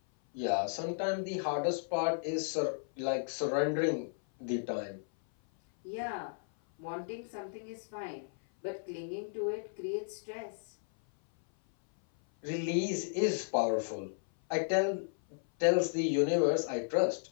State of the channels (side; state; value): right; silent; 55 dB below the other